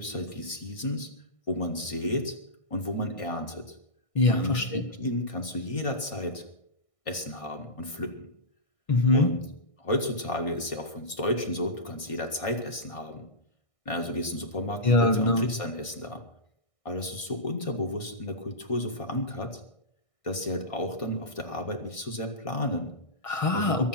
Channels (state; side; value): late; right; 1.6 ms